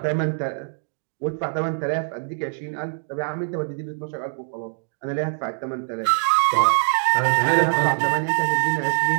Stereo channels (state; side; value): silent; left; 63 dB below the other